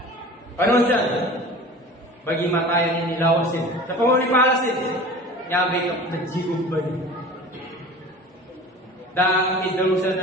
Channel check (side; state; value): both; normal; correlation 0.39